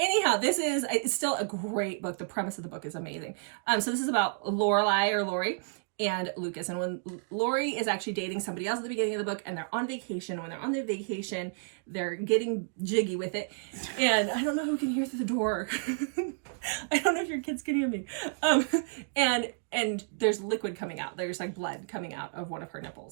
it's still a great book. The premise of the book is amazing. So this is about Lori and Lucas. And when Lori is actually dating somebody else at the beginning of the book, and they're on vacation, when they're on their vacation, they're getting jiggy with it. And I don't know who can hear through the door. I don't know if your kids can hear me. And there's liquid coming out. There's like blood coming out of one of her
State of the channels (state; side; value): silent; left; digital silence